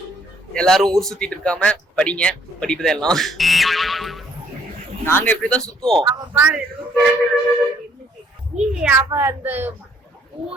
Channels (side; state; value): both; normal; correlation 0.65